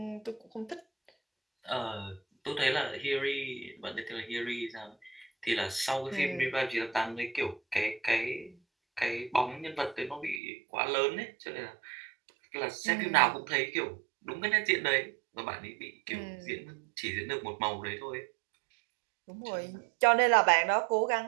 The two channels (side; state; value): left; drops out; at 10.4 s